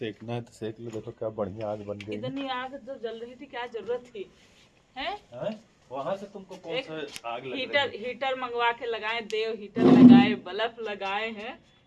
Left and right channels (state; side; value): identical; both; correlation 1.00